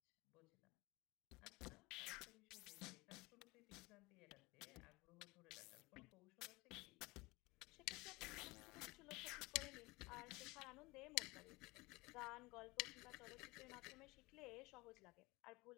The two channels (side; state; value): right; quieter; 23.0 dB